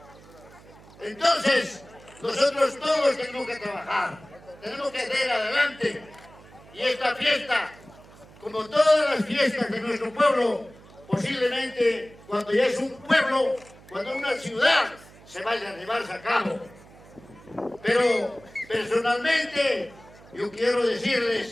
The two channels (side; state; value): right; noise; hum, 23 dB below the sound